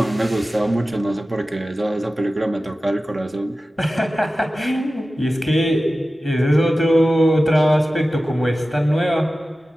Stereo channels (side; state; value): both; normal; correlation 0.95